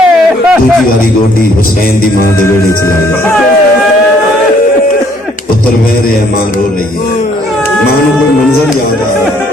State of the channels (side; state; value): both; normal; correlation 0.64